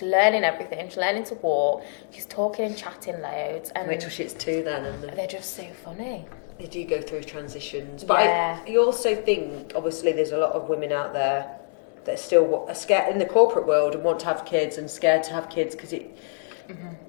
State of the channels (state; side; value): silent; right; 61 dB below the other